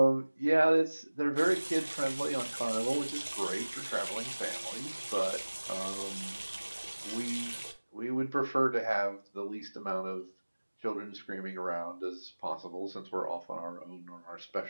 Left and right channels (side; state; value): both; inverted; correlation -1.00